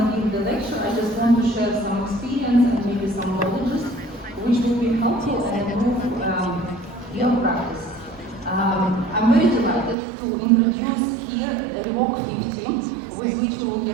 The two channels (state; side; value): drops out; left; at 10.0 s